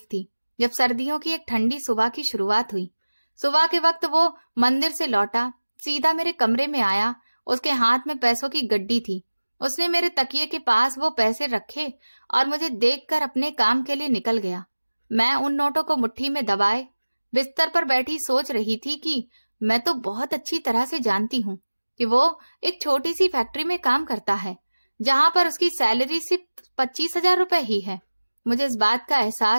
थी, जब सर्दियों की एक ठंडी सुबह की शुरुआत हुई। सुबह के वक्त वो मंदिर से लौटा, सीधा मेरे कमरे में आया। उसके हाथ में पैसों की गड्डी थी। उसने मेरे तकिए के पास वो पैसे रखे और मुझे देखकर अपने काम के लिए निकल गया। मैं उन नोटों को मुट्ठी में दबाए बिस्तर पर बैठी सोच रही थी कि मैं तो बहुत अच्छी तरह से जानती हूँ कि वो एक छोटी सी फैक्ट्री में काम करता है, जहां पर उसकी सैलरी सिर्फ 25,000 रुपए ही है। मुझे इस बात का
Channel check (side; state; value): both; inverted; correlation -1.00